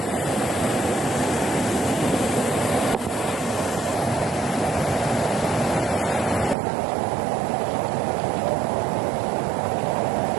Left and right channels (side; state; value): left; drops out; at 6.6 s